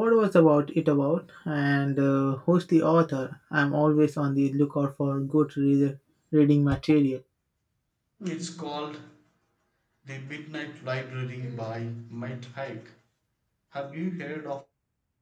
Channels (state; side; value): identical; both; correlation 1.00